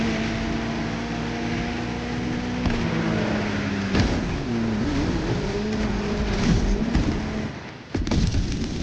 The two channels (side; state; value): both; identical; correlation 1.00